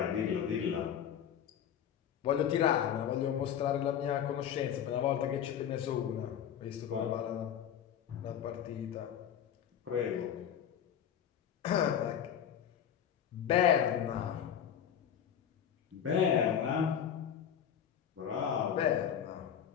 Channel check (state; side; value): quieter; right; 9.1 dB